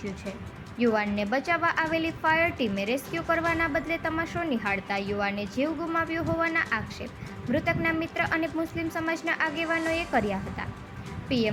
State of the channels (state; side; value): identical; both; correlation 1.00